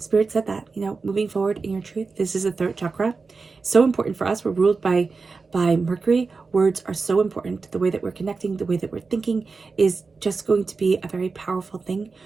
said that, moving forward in your truth. This is the third chakra. So important for us. We're ruled by Mercury. Words are so important. The way that we're connecting, the way that we're thinking is just going to be a very powerful thing.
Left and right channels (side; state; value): left; quieter; 4.4 dB